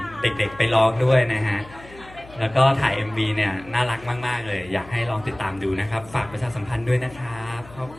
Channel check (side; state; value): left; noise; hum, 20 dB below the sound